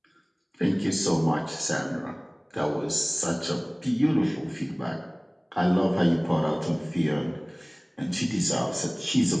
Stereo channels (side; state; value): both; identical; correlation 1.00